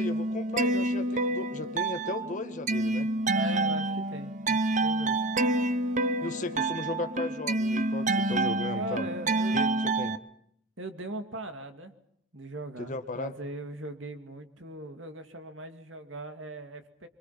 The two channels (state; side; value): normal; both; correlation 0.31